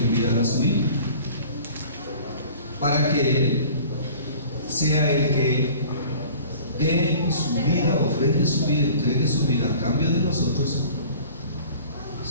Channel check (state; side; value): inverted; both; correlation -0.46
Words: a su Hijo para que Él sea el que dé su vida, ofrende su vida, entregue su vida a cambio de nosotros.